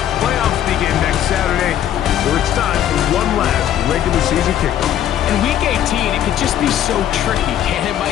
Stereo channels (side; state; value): right; quieter; 10.9 dB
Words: Playoffs begin next Saturday. So it's time for one last regular season kickoff. In Week 18, it could just be so tricky, can't it,